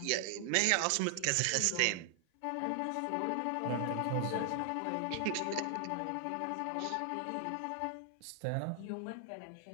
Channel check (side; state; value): both; different; correlation 0.00